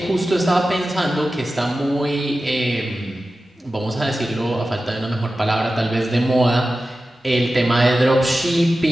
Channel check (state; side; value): normal; both; correlation 0.94